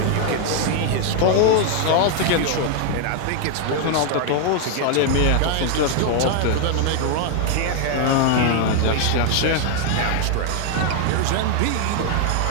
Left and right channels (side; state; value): both; different; correlation 0.00